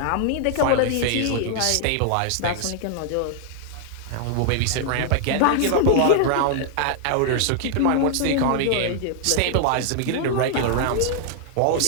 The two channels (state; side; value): different; both; correlation 0.00